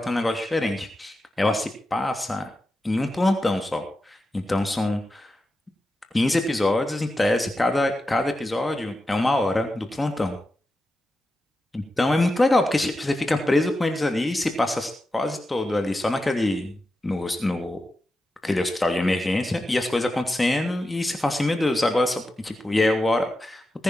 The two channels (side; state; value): both; normal; correlation 0.90